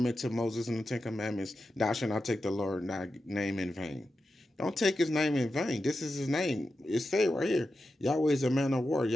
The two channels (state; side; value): normal; both; correlation 0.90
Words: to Moses in the 10 Commandments, thou shalt not take the Lord thy name in vain. Don't take his name in vain. This is his name. It's said right here. Yahweh is a man of war.